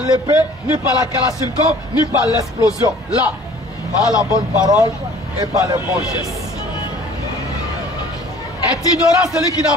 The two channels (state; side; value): normal; both; correlation 0.50